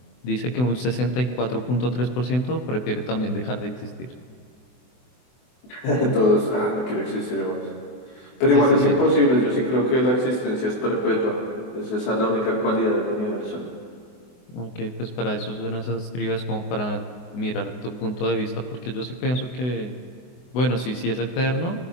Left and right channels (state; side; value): late; right; 24 ms